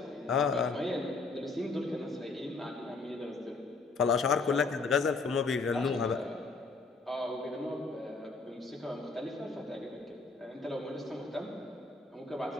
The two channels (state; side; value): quieter; right; 4.0 dB